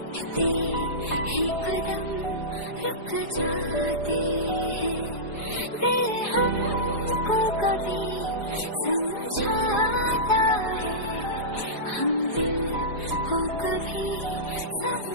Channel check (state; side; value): late; right; 4.8 ms